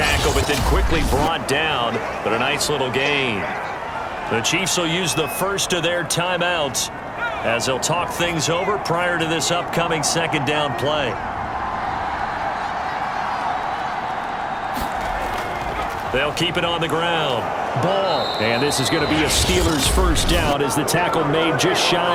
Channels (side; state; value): both; identical; correlation 1.00